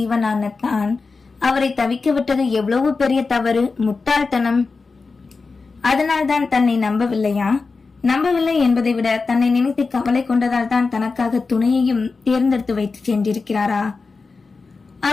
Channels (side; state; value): right; quieter; 4.3 dB